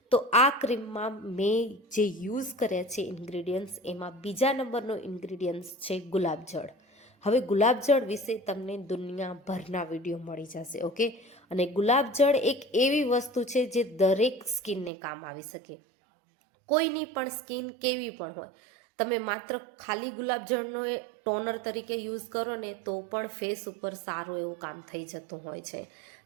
તો આ ક્રીમમાં મેં જે યુઝ કર્યા છે ઇન્ગ્રીડિયન્ટ્સ, એમાં બીજા નંબરનો ઇન્ગ્રીડિયન્ટ્સ છે ગુલાબજળ. હવે ગુલાબજળ વિશે તમને દુનિયાભરના વિડીયો મળી જશે. ઓકે, અને ગુલાબજળ એક એવી વસ્તુ છે જે દરેક સ્કિનને કામ આવી શકે. કોઈની પણ સ્કિન કેવી પણ હોય, તમે માત્ર ખાલી ગુલાબજળનો ટોનર તરીકે યુઝ કરો ને તો પણ ફેસ ઉપર સારું એવું કામ થઈ જતું હોય છે.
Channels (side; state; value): left; drops out; at 14.9 s